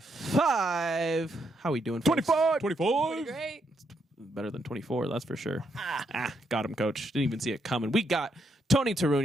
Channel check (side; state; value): both; normal; correlation 0.78